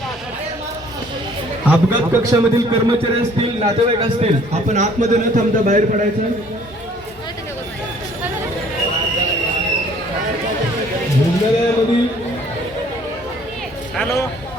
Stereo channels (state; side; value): normal; both; correlation 0.57